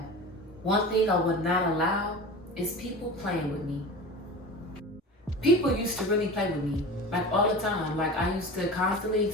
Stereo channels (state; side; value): normal; both; correlation 0.33